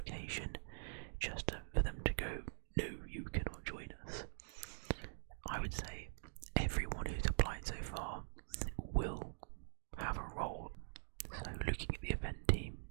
just for them to go, no, you cannot join us. I would say everyone who's applied so far will have a role. So looking at the event team,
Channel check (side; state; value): left; silent; digital silence